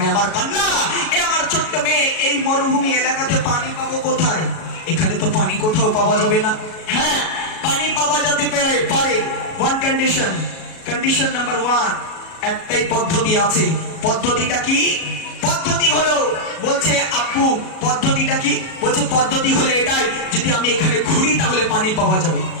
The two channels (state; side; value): late; right; 37 ms